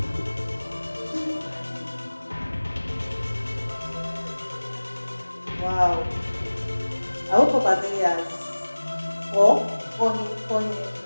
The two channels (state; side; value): inverted; both; correlation -1.00